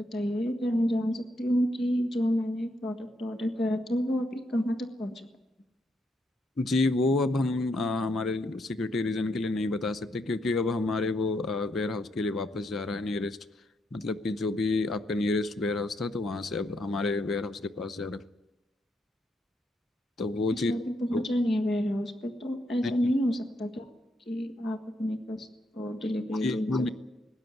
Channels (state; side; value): normal; both; correlation 0.77